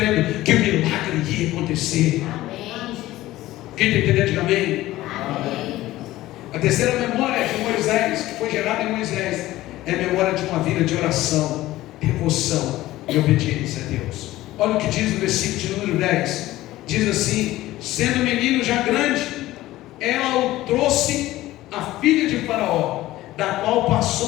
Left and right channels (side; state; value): right; quieter; 16.3 dB